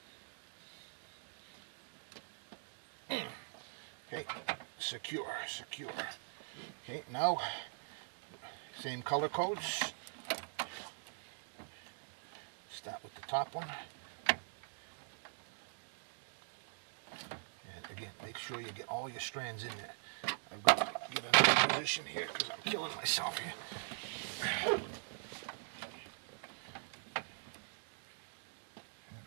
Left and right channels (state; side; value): silent; left; digital silence